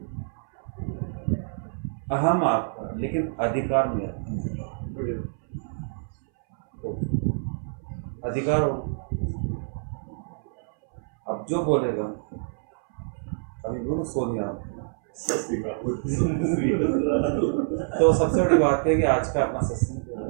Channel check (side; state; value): left; silent; 60 dB below the other